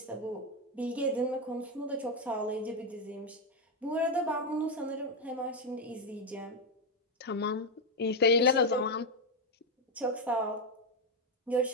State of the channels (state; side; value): normal; both; correlation 0.06